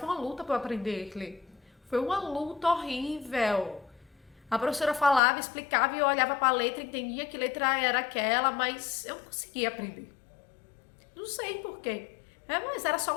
uma luta pra eu aprender a ler. Foi uma luta horrível. A professora falava, explicava e eu olhava pra letra, entendia que letra era aquela, mas eu não conseguia aprender. Não sei porquê. Mas era só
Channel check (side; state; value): right; drops out; at 5.2 s